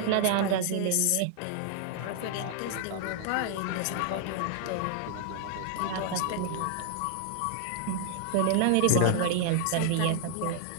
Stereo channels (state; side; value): different; both; correlation -0.01